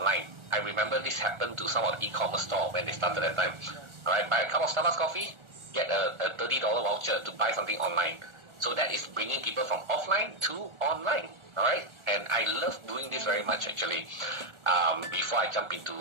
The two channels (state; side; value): late; left; 1.4 ms